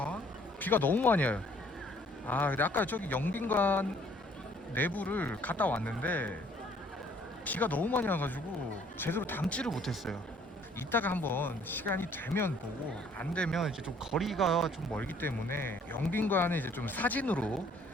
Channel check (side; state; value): both; normal; correlation 0.60